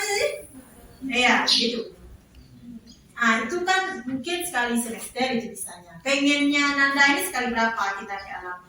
sih? Ya gitu. Nah, itu kan mungkin sekali semester itu bisanya. Pengennya Nanda ini sekali berapa kita ke alam?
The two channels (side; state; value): both; identical; correlation 1.00